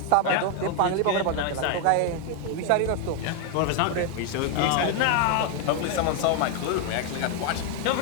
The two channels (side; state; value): both; different; correlation 0.01